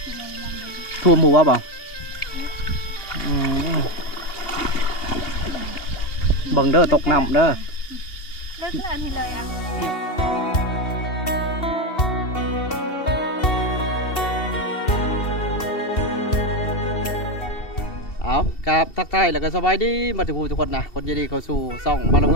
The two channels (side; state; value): right; late; 2.7 ms